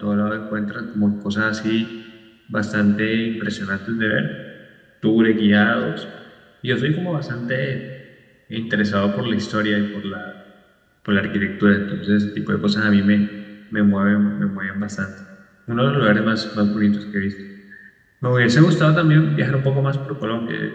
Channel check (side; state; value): both; identical; correlation 1.00